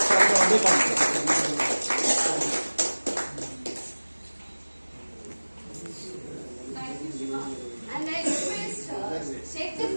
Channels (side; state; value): both; inverted; correlation -1.00